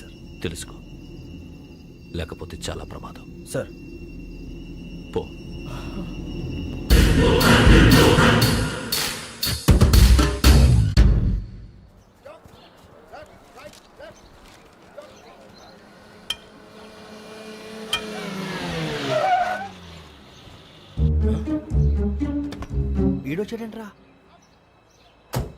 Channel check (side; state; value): both; identical; correlation 1.00